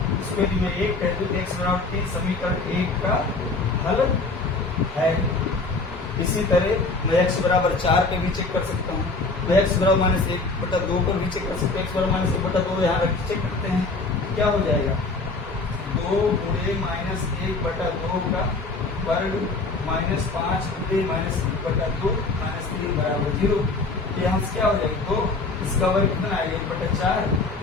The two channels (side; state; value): right; quieter; 3.6 dB